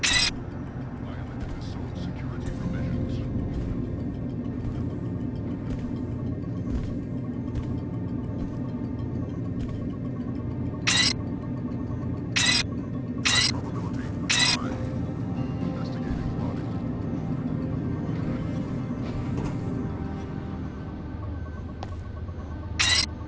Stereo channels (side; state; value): both; identical; correlation 1.00